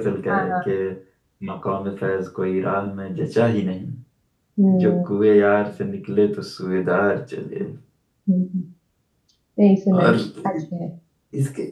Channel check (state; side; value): identical; both; correlation 1.00